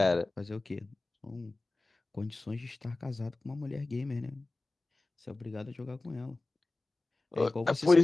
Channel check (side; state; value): right; quieter; 3.1 dB